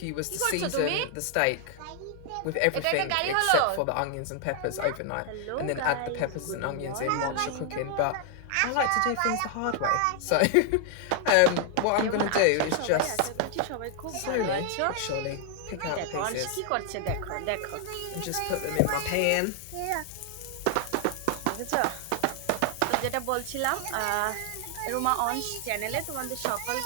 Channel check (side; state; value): both; different; correlation 0.00